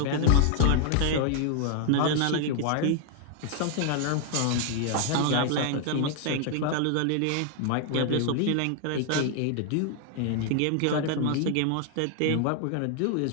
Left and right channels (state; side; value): different; both; correlation 0.00